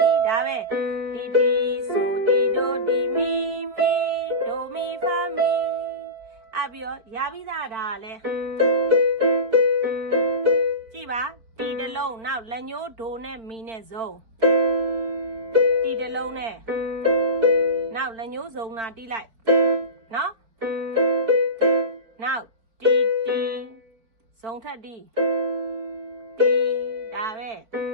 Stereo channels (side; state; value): left; late; 4.4 ms